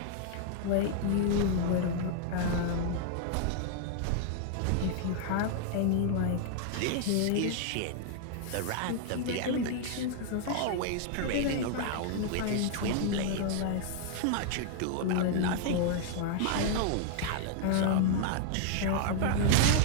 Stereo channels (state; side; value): different; both; correlation 0.00